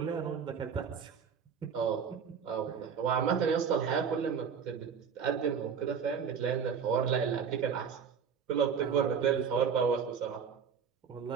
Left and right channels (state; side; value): quieter; left; 6.9 dB